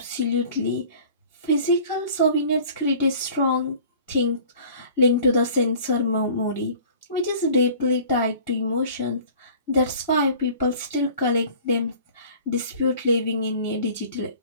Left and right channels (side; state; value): both; inverted; correlation -0.47